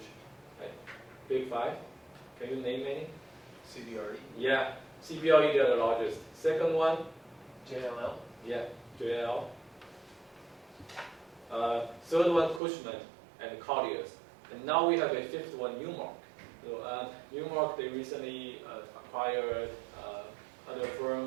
Like big five? Can you name any? CBRE. Yeah, CBRE, they're the largest. Second one? JLL. Yeah, JLL. Third one, Cushman and Colliers. And now we have a fifth one, Newmark. So Newmark, they recently acquired other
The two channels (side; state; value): left; drops out; at 12.6 s